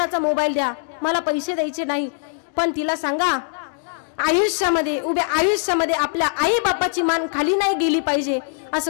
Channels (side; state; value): right; silent; digital silence